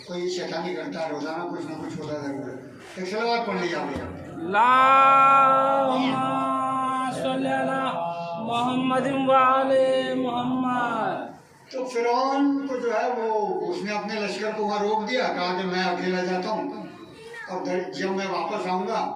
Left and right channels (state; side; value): identical; both; correlation 1.00